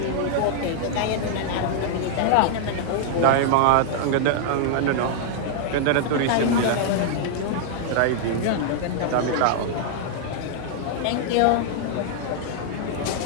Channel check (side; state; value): both; different; correlation -0.01